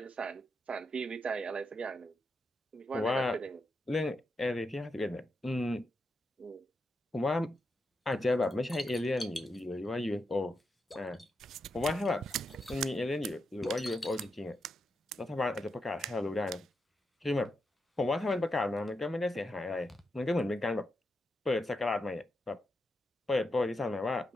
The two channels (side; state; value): both; normal; correlation 0.85